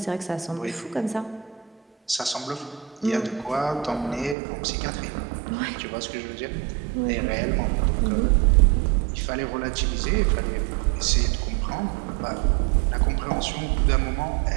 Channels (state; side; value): drops out; left; at 4.4 s